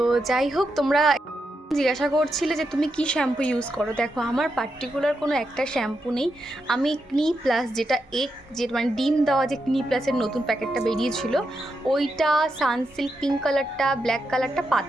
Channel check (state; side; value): normal; both; correlation 0.85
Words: যাই হোক, তোমরা জিজ্ঞাসা করছিলে যে তুমি কি শ্যাম্পু ইউজ করো। দেখো আমার পার্টিকুলার কোনো একটা শ্যাম্পু নেই, আমি ক্নি প্লাস যেটা মানে ডিম দেওয়া যে ক্নি প্লাসের নতুন প্যাকেটটা বেরিয়েছিল ওইটা, সানসিল্ক পিঙ্ক কালারটা, ব্ল্যাক কালারটা